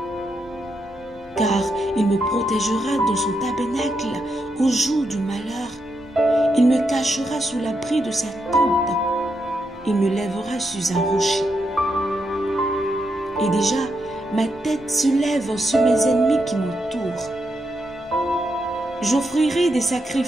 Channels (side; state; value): both; normal; correlation 0.82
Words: Car il me protégera dans son tabernacle au jour du malheur. Il me cachera sous l'abri de sa tente. Il me lèvera sur un rocher. Et déjà, ma tête se lève sur mes ennemis qui m'entourent. J'offrirai des